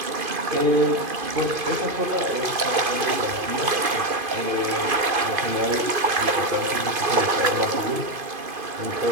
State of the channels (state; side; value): late; left; 2.5 ms